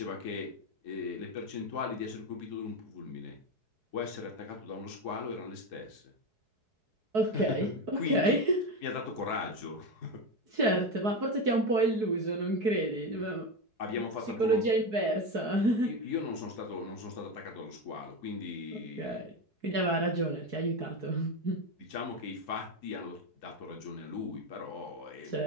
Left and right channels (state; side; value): late; left; 4.7 ms